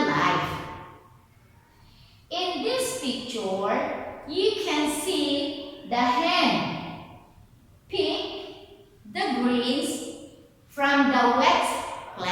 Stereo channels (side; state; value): both; identical; correlation 1.00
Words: life? In this picture, you can see the hen pick the greens from the wet